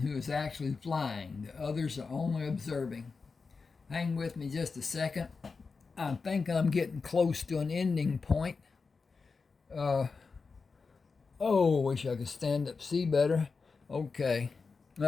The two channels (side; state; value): right; quieter; 4.7 dB